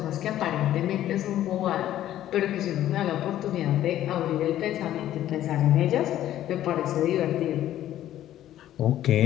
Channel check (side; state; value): right; quieter; 12.6 dB